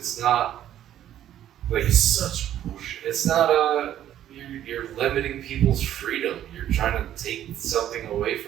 not like It's such bullshit. it's not you're limiting people's freedom. You're trying to take something away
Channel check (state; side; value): quieter; left; 11.6 dB